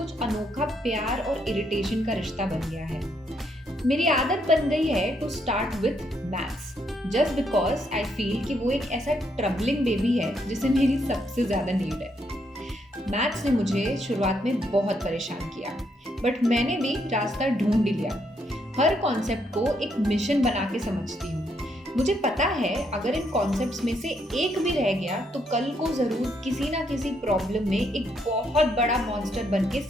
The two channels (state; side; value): normal; both; correlation 0.75